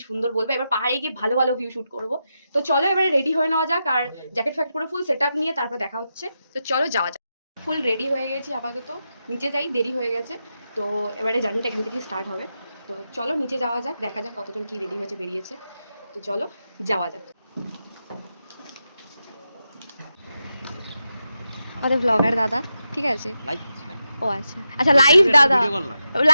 সুন্দর বলবো। এবার পাহাড়ে গিয়ে ভালো ভালো ভিউ শুট করবো। তো চলো এবারে রেডি হয়ে নেওয়া যাক, আর জ্যাকেট ফ্যাকেট করে ফুল সেট আপ নিয়ে তারপর দেখা হচ্ছে। তো চলো যাওয়া যাক। ফুল রেডি হয়ে গেছি আপাতত, নিচে যাই, দেরি হয়ে গেছে। তো এবারে জার্নিটা এখান থেকে স্টার্ট হবে। তো চলো নিচে যাওয়া যাক, দেখা যাক কতজন কি রেডি হয়েছে বেরিয়েছে। তো চলো যাওয়া যাক। আমাদের ব্লগার দাদা, ঠিক আছে? ও আচ্ছা আচ্ছা, লাইভ দাদা,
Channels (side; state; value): both; inverted; correlation -0.88